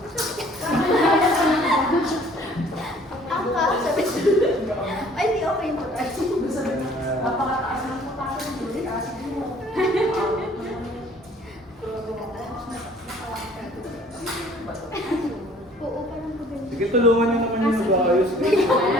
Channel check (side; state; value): both; normal; correlation 0.55